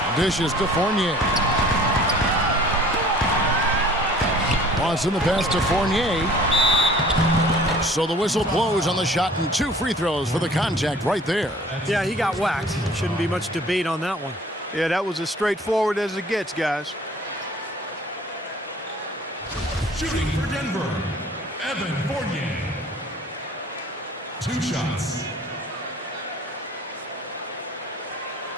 Dishes to Fournier. Lawson the pass to Fournier. So the whistle blows on the shot and 2 free throws for the contact right there. Yeah, he got whacked. Shouldn't be much debate on that one. Yeah, that was as straightforward as it gets, guys. Shooting for Denver, Evan Fournier. 2 shots.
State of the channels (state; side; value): normal; both; correlation 0.50